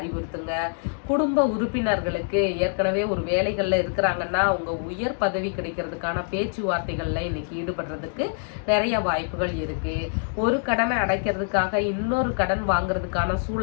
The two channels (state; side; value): silent; right; 62 dB below the other